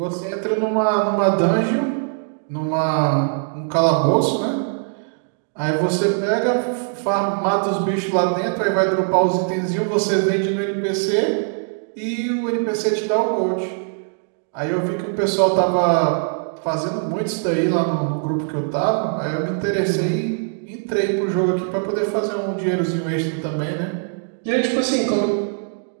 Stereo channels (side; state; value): left; silent; 65 dB below the other